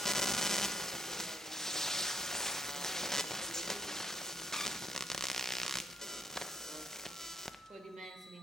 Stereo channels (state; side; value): normal; both; correlation 0.72